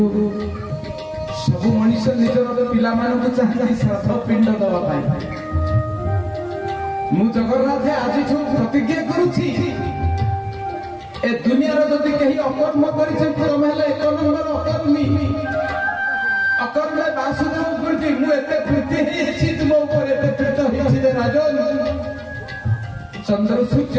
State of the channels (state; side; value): identical; both; correlation 1.00